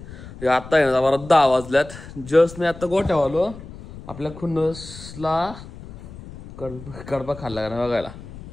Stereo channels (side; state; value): left; noise; rumble, 15 dB below the sound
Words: आता आहे ना बरं 10 वाजल्यात. जस्ट मी आता गोठ्यावर आलो. आपल्या खुन्नसला कडबा खाल्ला का बघायला.